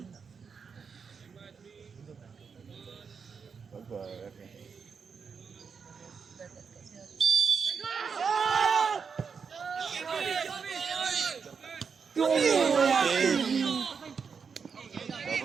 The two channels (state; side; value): quieter; left; 5.9 dB